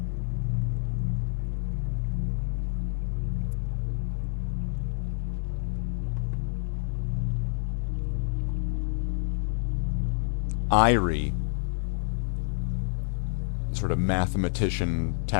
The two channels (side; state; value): right; silent; digital silence